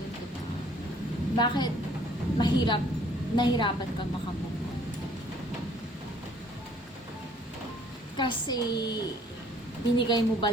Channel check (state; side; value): normal; both; correlation 0.59